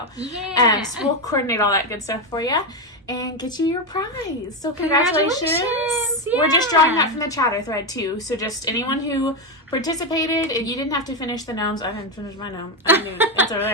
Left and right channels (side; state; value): both; normal; correlation 0.09